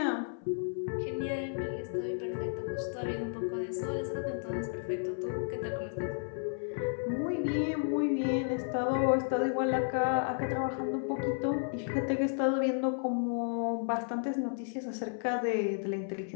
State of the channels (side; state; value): right; silent; 56 dB below the other